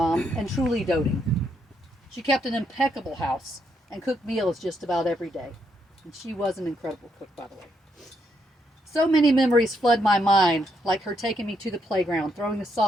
and truly doting. She kept an impeccable house and cooked meals just about every day. And she was an incredible cook, by the way. So many memories flood my mind, like her taking me to the playground, throwing the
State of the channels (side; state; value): both; normal; correlation 0.77